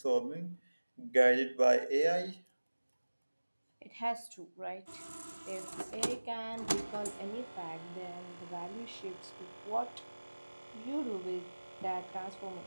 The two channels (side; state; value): both; inverted; correlation -1.00